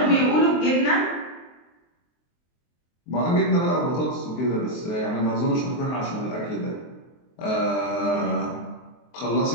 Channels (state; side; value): late; right; 23 ms